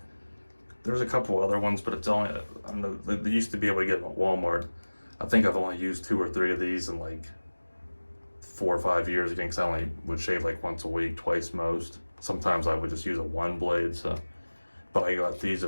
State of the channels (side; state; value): both; inverted; correlation -1.00